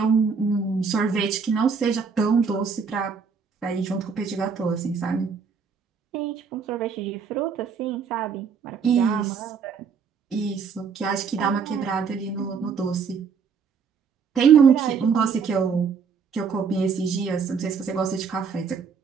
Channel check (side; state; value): left; quieter; 5.9 dB